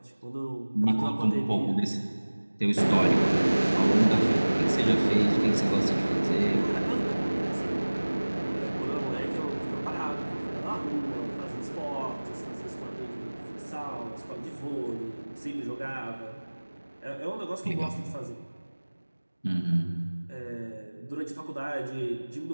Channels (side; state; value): both; inverted; correlation -1.00